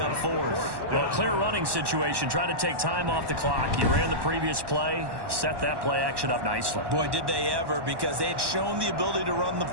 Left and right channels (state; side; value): late; left; 1.1 ms